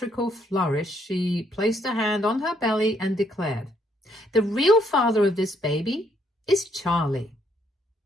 flourish, she placed a hand on her belly and declared, "The real father of this baby is Charlie."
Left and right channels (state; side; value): normal; both; correlation 0.71